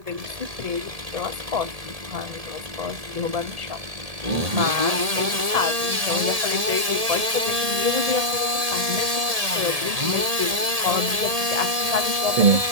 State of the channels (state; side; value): late; left; 1.7 ms